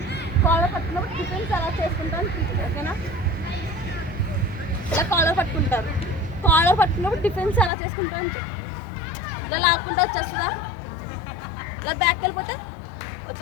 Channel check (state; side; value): drops out; right; at 7.7 s